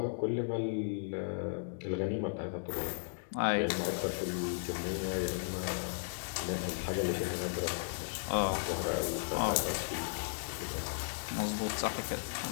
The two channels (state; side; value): silent; right; digital silence